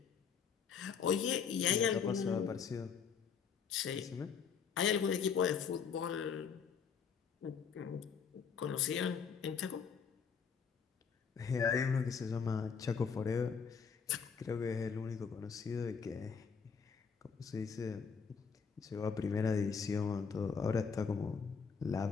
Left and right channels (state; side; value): quieter; right; 6.4 dB